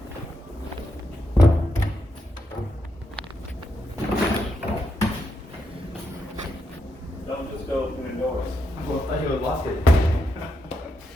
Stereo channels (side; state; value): both; normal; correlation 0.82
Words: Don't just go opening doors. Well, I thought you would lock it.